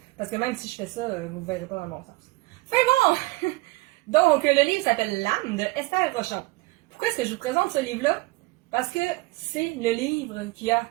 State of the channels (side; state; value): left; quieter; 22.0 dB